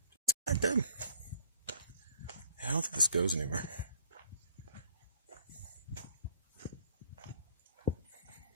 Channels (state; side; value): inverted; both; correlation -0.58